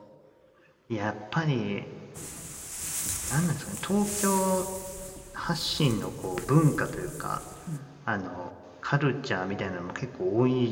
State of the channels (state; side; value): identical; both; correlation 1.00